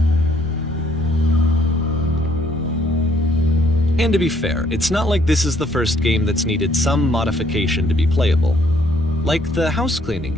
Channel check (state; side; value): normal; both; correlation 0.65